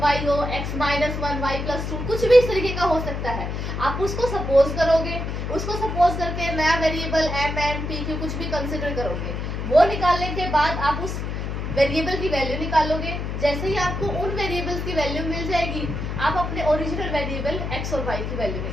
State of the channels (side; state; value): left; noise; hum, 4 dB below the sound